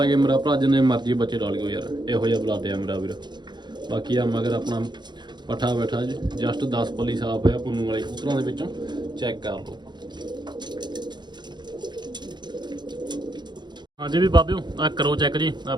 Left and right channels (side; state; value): left; late; 0.21 ms